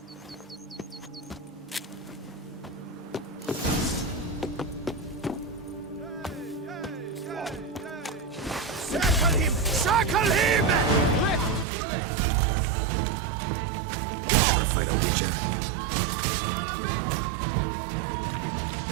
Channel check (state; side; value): drops out; left; at 11.7 s